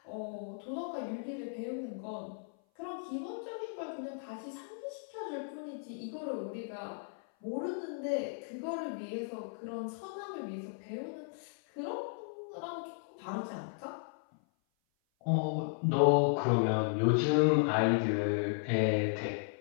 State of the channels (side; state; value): right; silent; 54 dB below the other